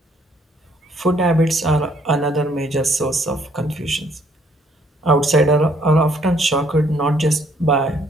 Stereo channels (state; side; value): normal; both; correlation 0.65